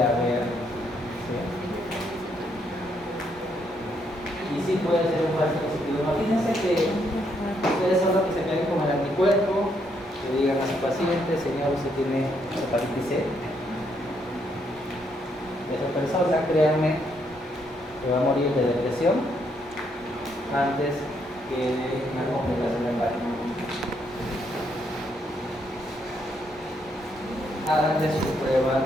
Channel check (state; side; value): normal; both; correlation 0.74